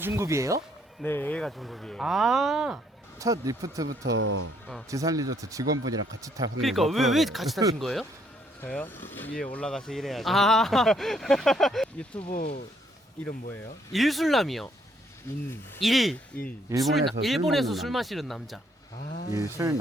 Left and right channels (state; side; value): normal; both; correlation 0.68